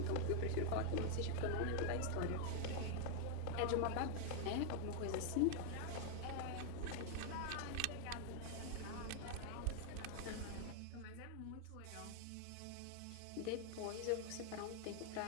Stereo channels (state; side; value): different; both; correlation 0.00